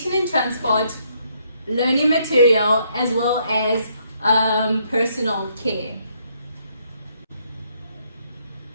and transport, learning material, as well as personal care.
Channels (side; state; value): both; inverted; correlation -0.71